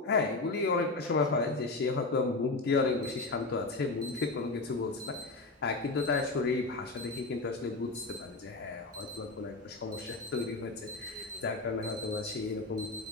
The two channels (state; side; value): quieter; right; 3.4 dB